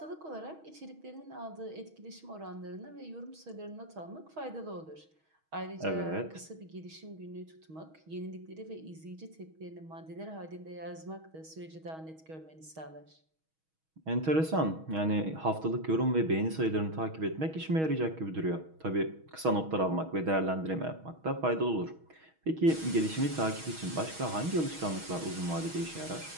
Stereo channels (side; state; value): left; late; 6.3 ms